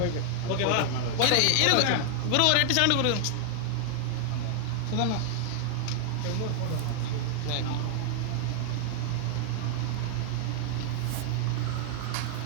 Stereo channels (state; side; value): different; both; correlation 0.00